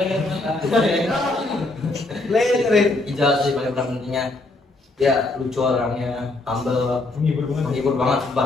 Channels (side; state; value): right; quieter; 3.0 dB